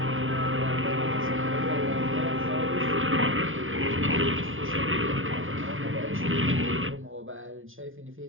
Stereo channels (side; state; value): left; late; 0.58 ms